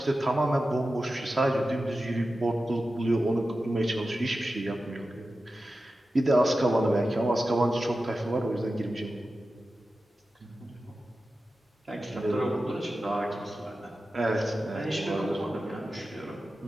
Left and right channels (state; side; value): normal; both; correlation 0.93